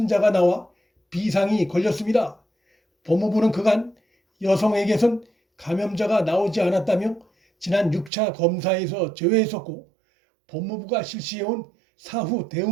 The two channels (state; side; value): drops out; left; at 8.1 s